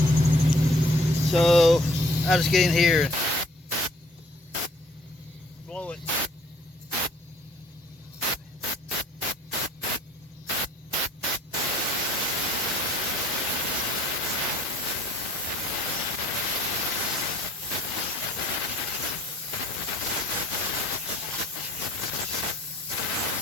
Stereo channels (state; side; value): normal; both; correlation 0.57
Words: So I just get in here and blow it.